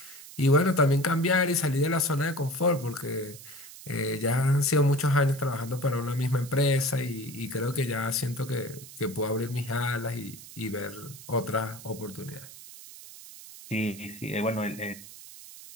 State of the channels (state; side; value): noise; right; hiss, 16 dB below the sound